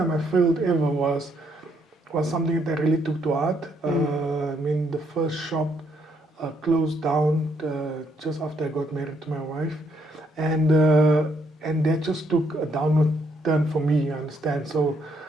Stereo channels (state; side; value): normal; both; correlation 0.72